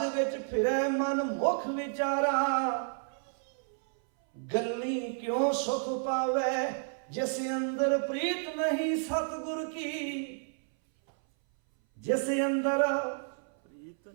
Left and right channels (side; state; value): left; silent; 57 dB below the other